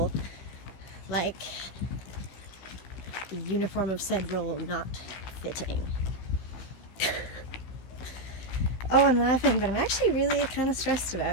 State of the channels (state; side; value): late; right; 16 ms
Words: like the uniform of said role not fitting. Oh, I'm laughing, but I'm actually really kind of stressed